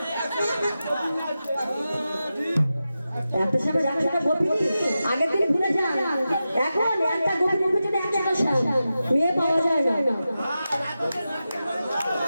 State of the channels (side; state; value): both; inverted; correlation -0.92